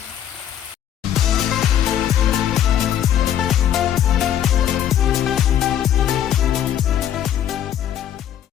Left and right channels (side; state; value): right; quieter; 10.3 dB